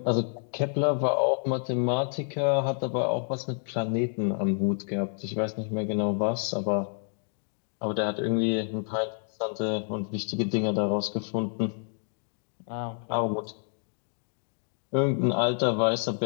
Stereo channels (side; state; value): right; silent; digital silence